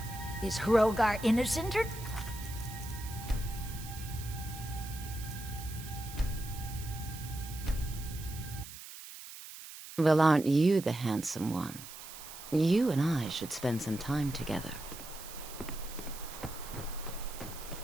Is Hrogar innocent or... Well, aren't you the handsome one? You and I should spend some time together.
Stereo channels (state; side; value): noise; right; hiss, 13 dB below the sound